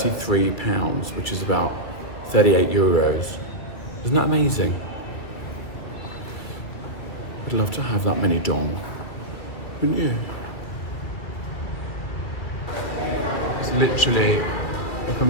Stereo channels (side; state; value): right; late; 2.5 ms